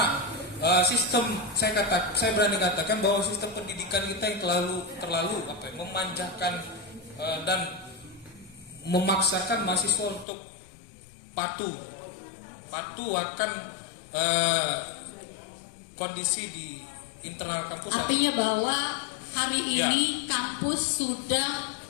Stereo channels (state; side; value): drops out; right; at 10.2 s